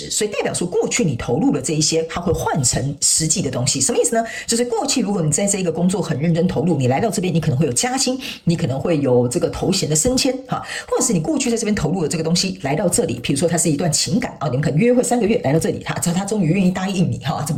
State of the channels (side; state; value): both; identical; correlation 1.00